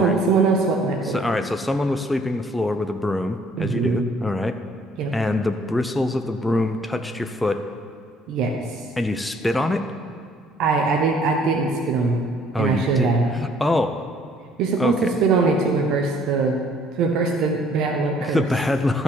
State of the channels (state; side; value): normal; both; correlation 0.60